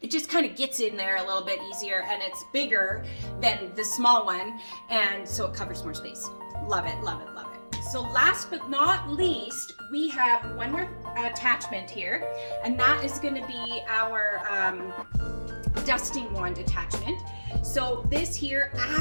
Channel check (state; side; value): inverted; both; correlation -1.00